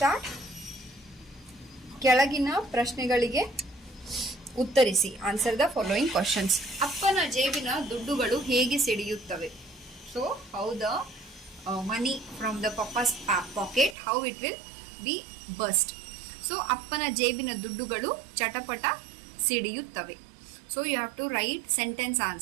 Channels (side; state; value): left; drops out; at 14.0 s